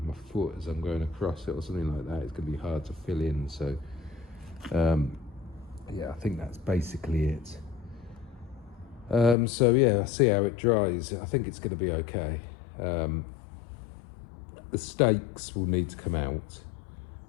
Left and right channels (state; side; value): drops out; right; at 9.3 s